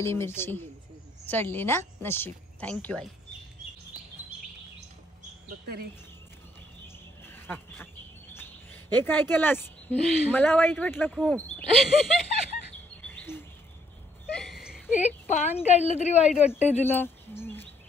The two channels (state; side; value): normal; both; correlation 0.70